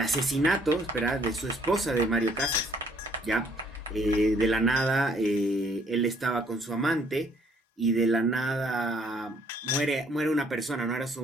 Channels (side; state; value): both; normal; correlation 0.64